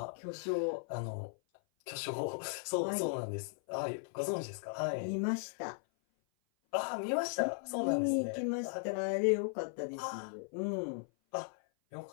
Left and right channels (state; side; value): silent; right; 53 dB below the other